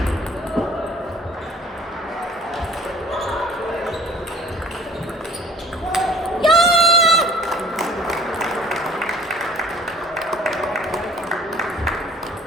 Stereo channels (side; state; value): both; normal; correlation 0.51